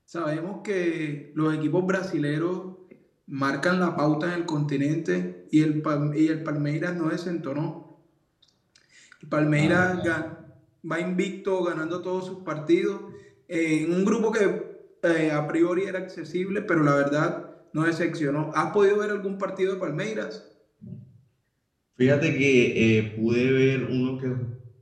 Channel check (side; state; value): both; identical; correlation 1.00